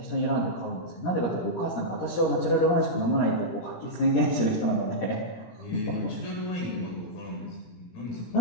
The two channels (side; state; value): right; late; 17 ms